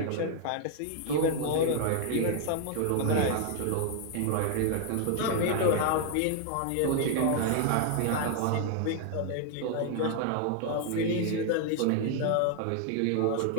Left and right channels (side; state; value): both; different; correlation 0.00